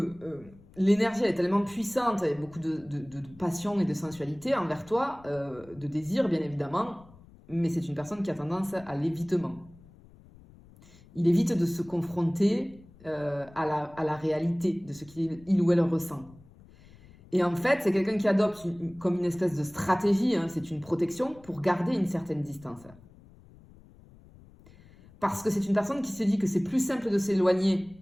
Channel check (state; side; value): noise; left; rumble, 24 dB below the sound